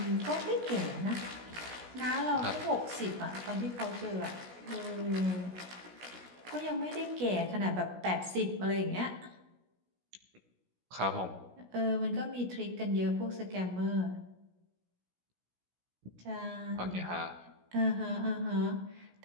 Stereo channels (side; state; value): left; late; 16 ms